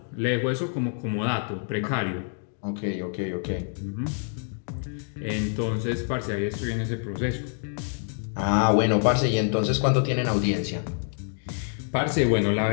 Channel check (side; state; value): right; silent; 56 dB below the other